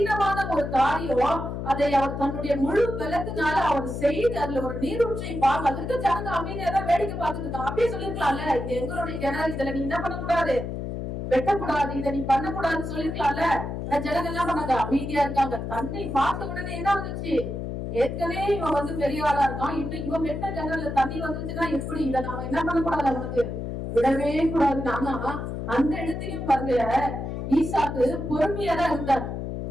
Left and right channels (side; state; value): left; noise; hum, 5 dB below the sound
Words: ஒரு காரியம், அதை அவர் தன்னுடைய முழு பலத்தினால அவர் செய்து அதுல ஒரு நீரூற்றை பார்க்க, அதற்கு ஜனங்க அமைதியா தான் வேடிக்கை பார்த்துட்டு இருக்காங்க. அப்படியே சொல்லிருக்கலாம்ல, இது எங்களுடைய கிணறு, இதுல நீ என்ன பண்ணக்கூடாது, வெட்டக்கூடாது, இதை நீ பண்ணக்கூடாதுன்னு சொல்லிருக்கலாம்ல. ஜனங்க என்ன பண்ணாங்க, அமைதியா இருக்காங்க. தண்ணி பார்த்த உடனே என்ன வந்துச்சு, ஏற்கனவே இவன் வந்து பெரிய ஆளா இருக்கான், இன்னும் இவன் வெட்ட கிணறுல தண்ணி வந்துச்சுன்னா எப்படி, இதை நாம என்ன பண்ணக்கூடாது, அவனுக்கு விடவே கூடாது. ஆனா அந்த இடத்திலையும் பாருங்க, ஈசாக்கு பொறுமையா தான் இருந்தார்.